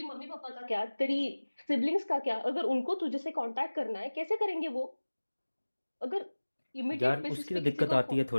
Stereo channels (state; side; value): inverted; both; correlation -1.00